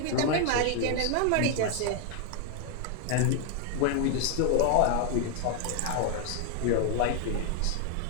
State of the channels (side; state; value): both; different; correlation 0.00